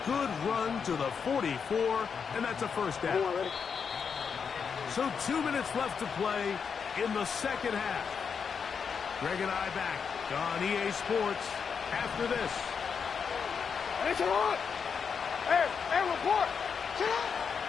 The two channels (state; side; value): quieter; right; 6.3 dB